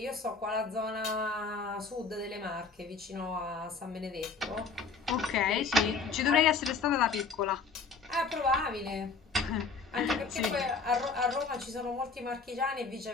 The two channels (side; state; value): right; quieter; 4.7 dB